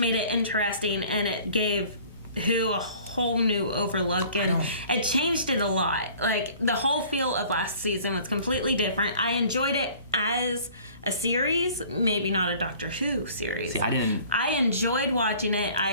it interesting, and it gave Who a whole new overlook, and it changed it a lot. Like, the whole feel of last season was completely different. I enjoyed it as a series, maybe not a Doctor Who series. See, I enjoyed watching it.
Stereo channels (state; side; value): inverted; both; correlation -0.50